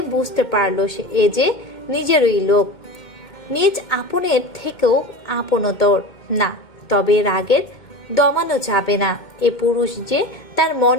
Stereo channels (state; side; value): late; right; 2.1 ms